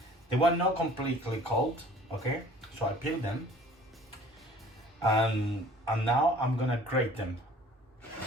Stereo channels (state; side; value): normal; both; correlation 0.50